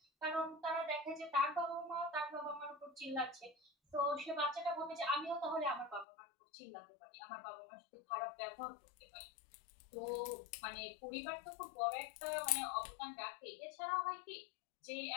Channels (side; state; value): right; drops out; at 6.1 s